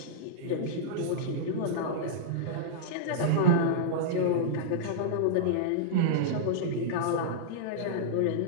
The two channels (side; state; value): both; different; correlation -0.02